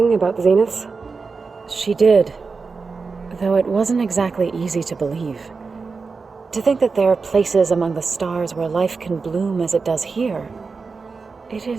about the Zeniths? She did, though it wasn't exactly easy to believe. To think that there are places among the stars where life can bloom as it does here, it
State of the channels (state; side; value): quieter; left; 4.6 dB